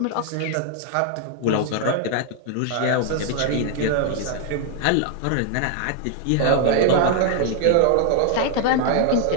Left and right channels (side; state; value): both; different; correlation 0.00